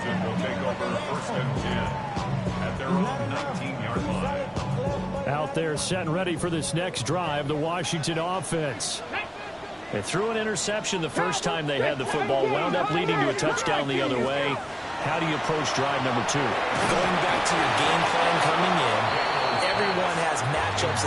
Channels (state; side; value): identical; both; correlation 1.00